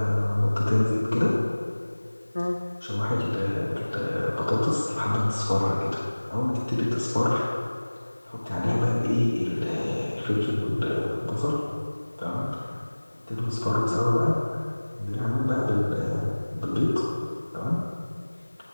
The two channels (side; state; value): both; inverted; correlation -1.00